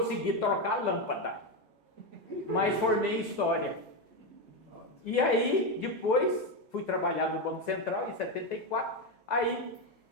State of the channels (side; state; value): both; normal; correlation 0.10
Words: trocar a lâmpada, mas formei em História. E aí, depois, fui trabalhar no Banco Central, em 74, aí